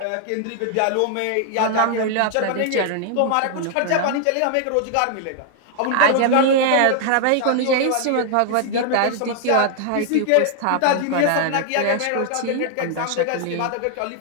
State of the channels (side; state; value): both; different; correlation 0.00